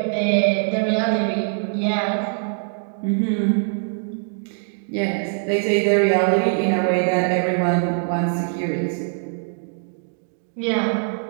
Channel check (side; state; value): left; silent; 64 dB below the other